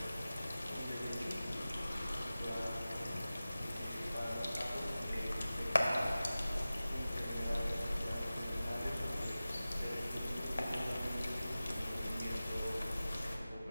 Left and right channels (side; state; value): both; inverted; correlation -0.96